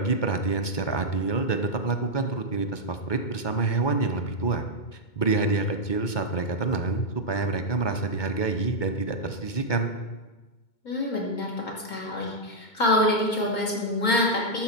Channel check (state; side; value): late; right; 2.2 ms